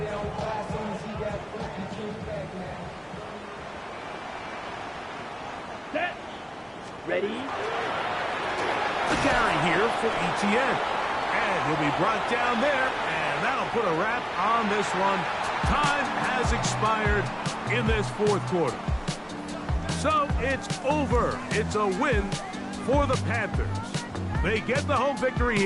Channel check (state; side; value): identical; both; correlation 1.00